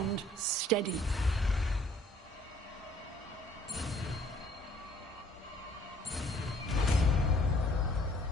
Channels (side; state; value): both; normal; correlation 0.60